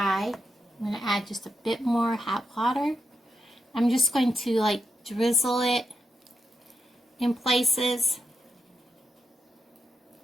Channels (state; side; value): normal; both; correlation 0.85